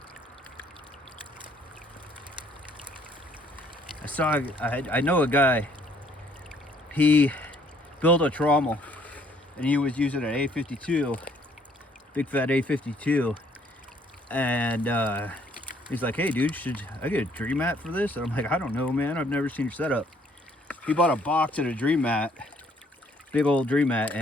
I know a guy, he built a trommel and he was using an A52, big fat A52, and he's like, hey dude, should I get a dream mat for this? And I'm like, I don't know, man, I've never seen your setup. He bought a box of a dream mat, big old dream mat,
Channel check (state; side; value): normal; both; correlation 0.63